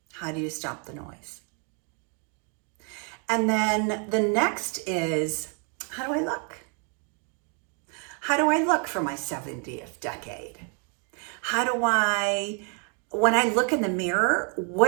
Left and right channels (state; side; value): quieter; left; 38.8 dB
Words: How do you stop the noise? And then the next is, how do I look? How do I look for my 70th decade? When I look in the mirror,